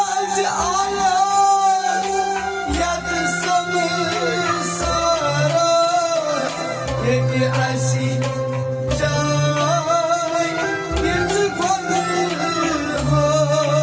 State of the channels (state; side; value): identical; both; correlation 1.00